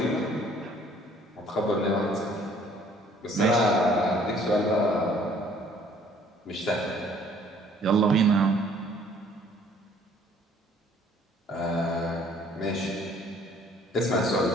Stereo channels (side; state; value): both; normal; correlation 0.58